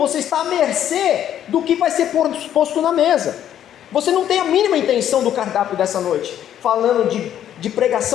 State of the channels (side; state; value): right; quieter; 10.6 dB